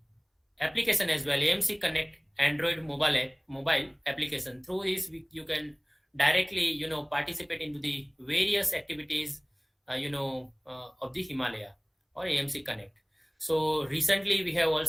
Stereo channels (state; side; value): identical; both; correlation 1.00